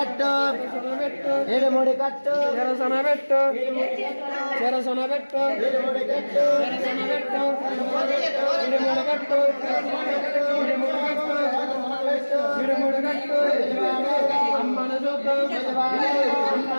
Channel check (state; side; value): inverted; both; correlation -1.00